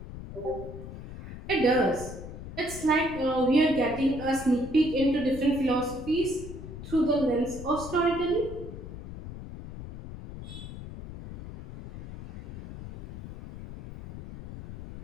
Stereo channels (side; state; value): left; noise; rumble, 11 dB below the sound